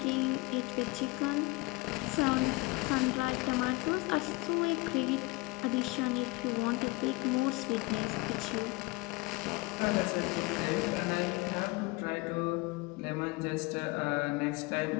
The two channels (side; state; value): right; quieter; 23.6 dB